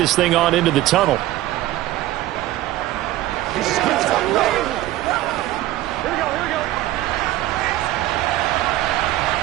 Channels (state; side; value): quieter; left; 15.3 dB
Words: thing on into the tunnel.